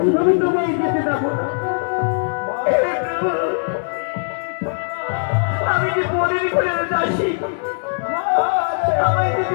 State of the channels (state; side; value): silent; right; digital silence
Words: আমি তোমায় যেতে দেবো না। আমি যে পরের ঘরে যাচ্ছি, আমায়